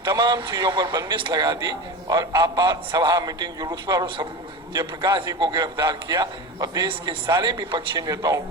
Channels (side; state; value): both; normal; correlation 0.27